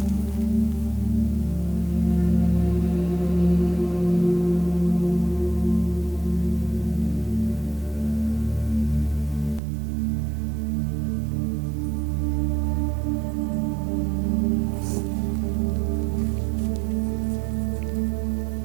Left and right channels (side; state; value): left; drops out; at 9.6 s